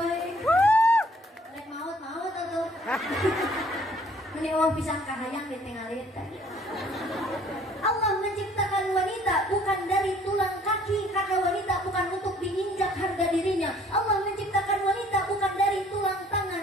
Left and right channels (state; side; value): normal; both; correlation 0.58